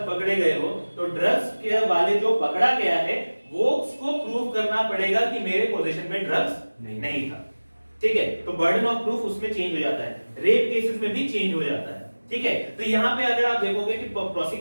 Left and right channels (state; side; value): inverted; both; correlation -1.00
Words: पकड़े गए हो, तो ड्रग्स के वाले जो पकड़ा गया है वो उसको प्रूव करना पड़ेगा कि मेरे पोजीशन में ड्रग्स नहीं था, ठीक है। तो बर्डन ऑफ प्रूफ उसमें चेंज हो जाता है। रेप केसेस में भी चेंज हो जाता है, ठीक है। तो यहाँ पे अगर आप देखोगे कि